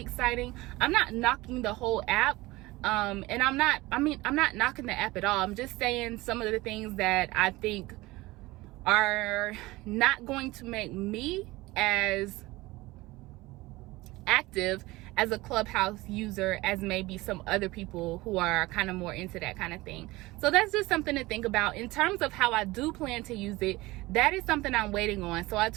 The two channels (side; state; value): left; quieter; 20.3 dB